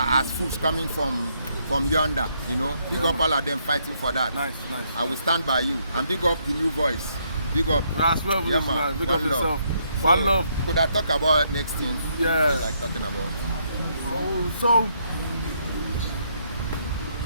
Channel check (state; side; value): inverted; both; correlation -0.73